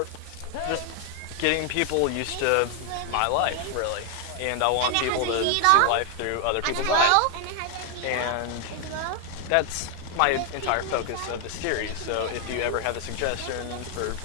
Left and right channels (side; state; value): both; different; correlation 0.00